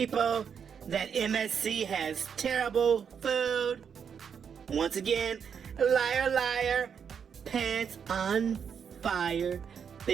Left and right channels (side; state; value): left; quieter; 7.2 dB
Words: that MSC has terrible food, once again, liar, liar, pants on fire,